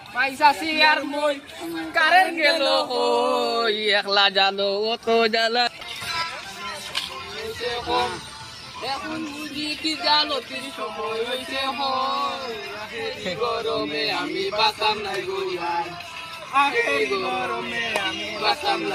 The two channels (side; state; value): both; identical; correlation 1.00